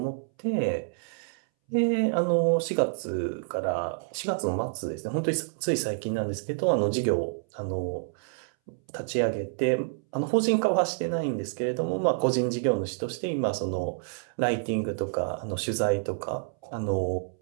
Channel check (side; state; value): left; silent; 59 dB below the other